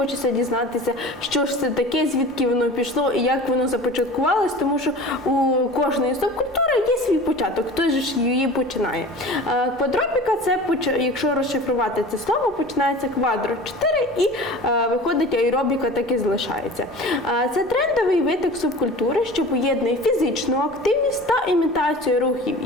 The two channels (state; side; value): normal; both; correlation 0.39